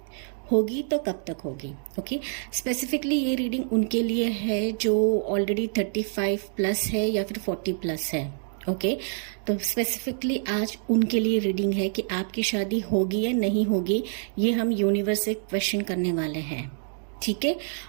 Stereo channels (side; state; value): left; silent; digital silence